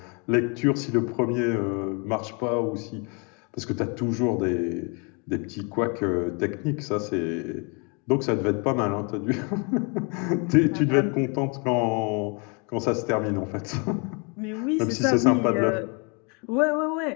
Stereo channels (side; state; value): right; quieter; 34.0 dB